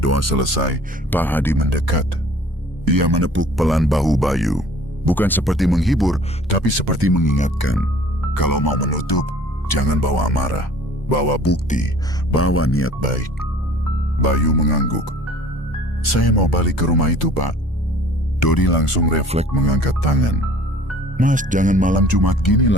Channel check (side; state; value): both; normal; correlation 0.50